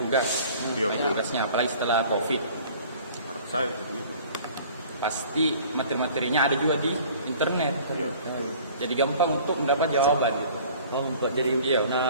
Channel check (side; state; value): both; inverted; correlation -0.49